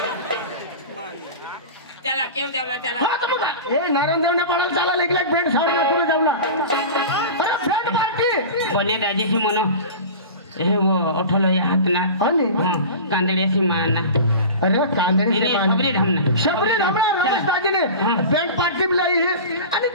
चला केव जावला चला ए नारायण देवने पडाल चाला लेकलेक भेट साडना तुला जावला अरे भेट पार्टी बने राजेशी मनो हे वो उठलो या हाथ ना आणि कांदड़े सी माना अरे कांदड़ी से मान शबरी हमला राजस्थानी ने बैंड पार्टी भी लाई है आणि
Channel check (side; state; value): both; inverted; correlation -0.33